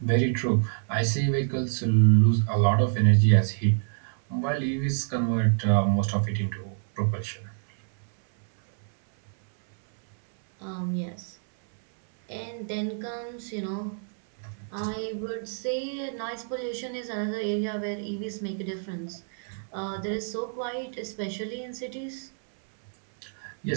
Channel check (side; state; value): left; silent; 60 dB below the other